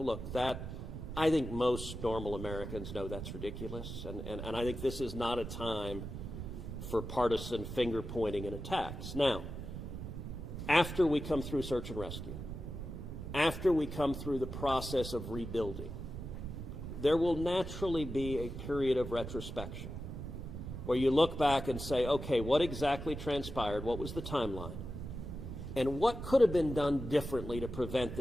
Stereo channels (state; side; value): noise; right; rumble, 7 dB below the sound